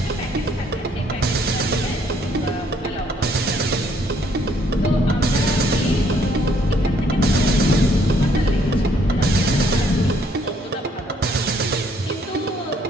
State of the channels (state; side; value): normal; both; correlation 0.67